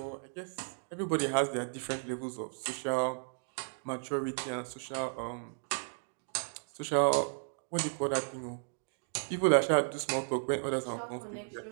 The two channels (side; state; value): left; silent; digital silence